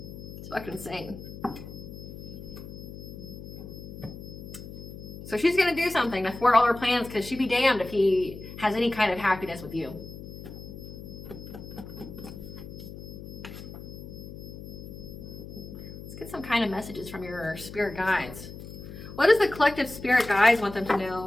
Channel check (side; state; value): left; noise; hum, 12 dB below the sound